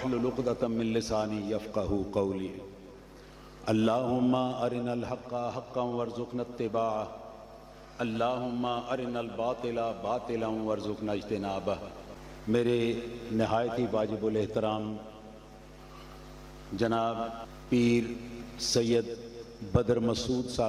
عقدۃ من لسانی یفقہوا قولی اللہم ارنا الحق حقا وارزقنا اتباعہ اللہم ارنا الباطل باطلا وارزقنا اجتنابہ۔ میرے نہایت ہی واجب الاحترام جناب پیر سید بدر مسعود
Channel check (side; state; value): both; identical; correlation 1.00